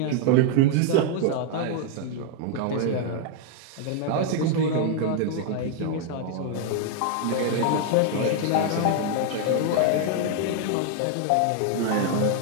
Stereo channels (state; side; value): different; both; correlation 0.00